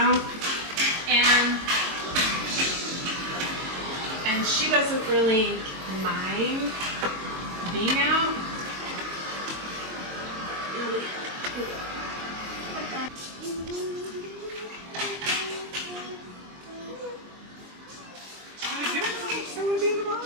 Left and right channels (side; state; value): left; late; 22 ms